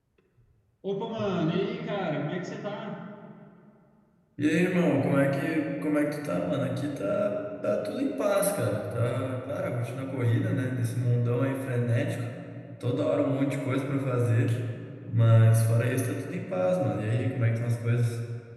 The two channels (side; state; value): both; identical; correlation 1.00